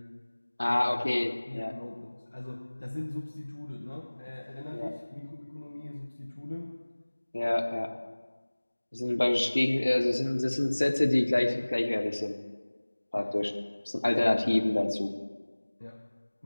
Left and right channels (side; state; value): both; inverted; correlation -1.00